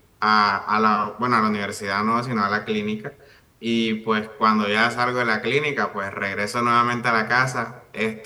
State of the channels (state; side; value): identical; both; correlation 1.00